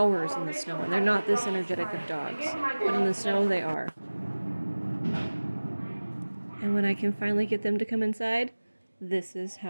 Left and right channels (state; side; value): inverted; both; correlation -1.00